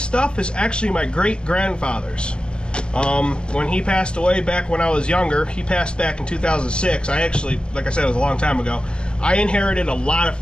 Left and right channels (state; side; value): late; right; 0.052 ms